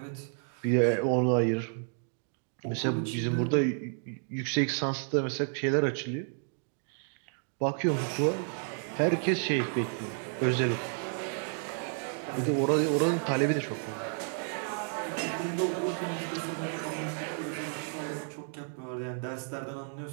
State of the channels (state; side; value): silent; left; 57 dB below the other